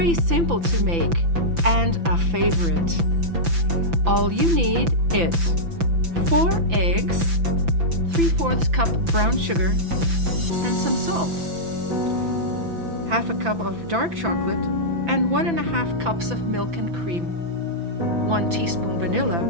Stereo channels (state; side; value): late; left; 5.9 ms